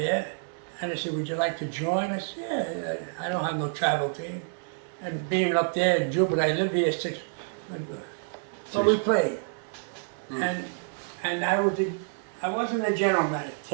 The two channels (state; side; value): silent; left; digital silence